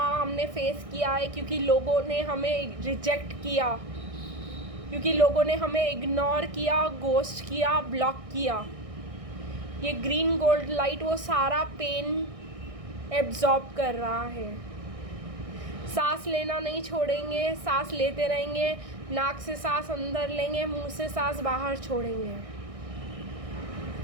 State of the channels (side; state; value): left; late; 1.6 ms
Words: हमने फेस किया है, क्योंकि लोगों ने हमें रिजेक्ट किया, क्योंकि लोगों ने हमें इग्नोर किया, गोस्ट किया, ब्लॉक किया, ये ग्रीन गोल्ड लाइट वो सारा पेन एब्जॉर्ब कर रहा है। सांस लेना नहीं छोड़ेंगे, सांस लेते रहेंगे, नाक से सांस अंदर लेंगे, मुंह से सांस बाहर छोड़ेंगे।